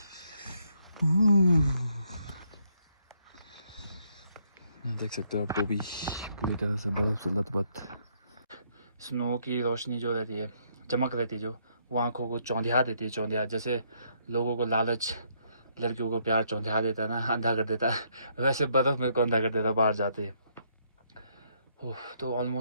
देख सकते हो आप, टोपी पूरी तरह से बर्फ से लथपथ। स्नो की रोशनी जो रहती है, चमक रहती है, जो वो आँखों को चौंधिया देती है। चौंधिया जैसे लोगों को लालच लड़कियों को प्यार चौंधिया देता है ना, अंधा कर देता है, वैसे बर्फ मेरे को अंधा कर देता बाहर जाते ही। तो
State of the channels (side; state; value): both; inverted; correlation -0.71